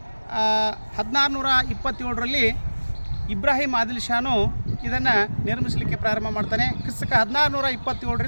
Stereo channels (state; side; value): inverted; both; correlation -1.00